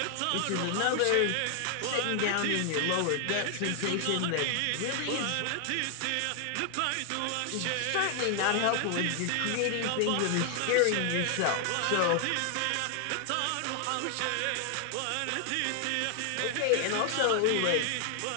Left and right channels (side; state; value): both; different; correlation 0.00